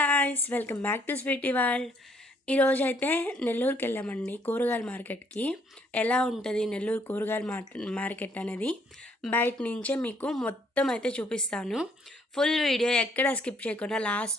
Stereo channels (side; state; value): both; normal; correlation 0.67